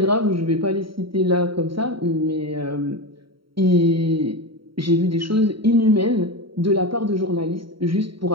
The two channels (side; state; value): left; late; 0.74 ms